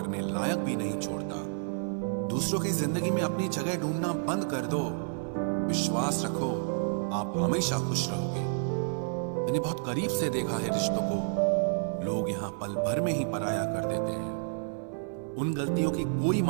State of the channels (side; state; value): left; silent; 56 dB below the other